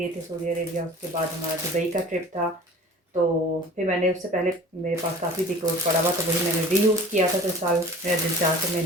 थे सऊदी अरेबिया, उसके बाद हमारा दुबई का ट्रिप था। तो फिर मैंने उससे पहले मेरे पास काफ़ी डिकोर पड़ा हुआ, तो वही मैंने रीयूज़ किया था। तो इस साल मेरा दिल चाह के मैं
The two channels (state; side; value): normal; both; correlation 0.43